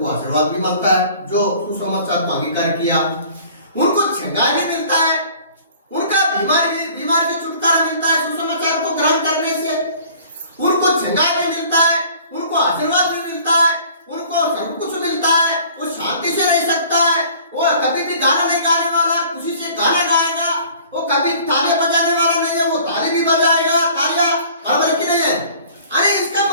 आशीर्वाद भी मिलता है, जो सुसमाचार को अंगीकार किया, उनको छंगा भी मिलता है, उनका बीमारी से छुटकारा मिलता है सुसमाचार को ग्रहण करने से, उनको छंगा भी मिलता है, उनको आशीर्वाद भी मिलता है, उनको सब कुछ मिलता है। गाना नहीं गाने वाला खुशी से गाना गाएगा, वो कभी तालियां बजाने वाला नहीं है, वो ताली भी बजाएगा, तालियां बराबर की नहीं है। अरे इसका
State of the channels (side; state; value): both; inverted; correlation -0.50